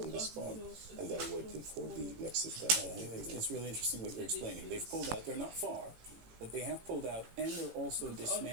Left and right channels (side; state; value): left; late; 18 ms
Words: this part and they're waiting for the next step. It's really interesting what you're explaining. They've pulled out. They're not far, but they have pulled out, and they're also